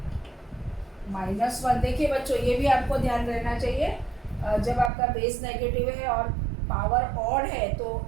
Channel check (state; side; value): drops out; left; at 4.9 s